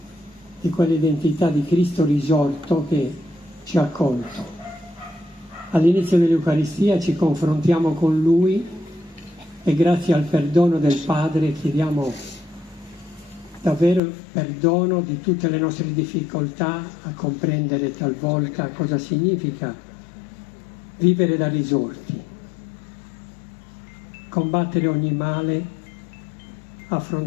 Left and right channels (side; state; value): right; drops out; at 14.0 s